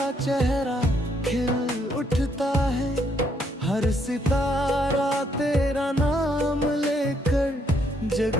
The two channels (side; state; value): both; normal; correlation 0.72